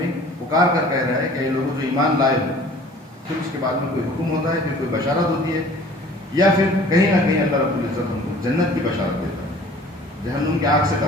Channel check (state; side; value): normal; both; correlation 0.49